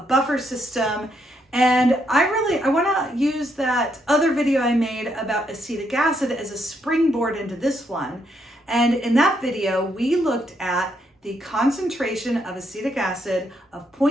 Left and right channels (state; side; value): normal; both; correlation 0.76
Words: system. And I want to use that other video I made about acetic acid as a springboard into this one. And in that video, we looked at the concentration of acetic acid of